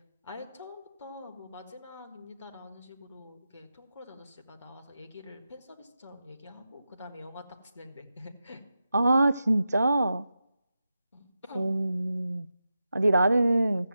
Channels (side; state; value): both; inverted; correlation -0.90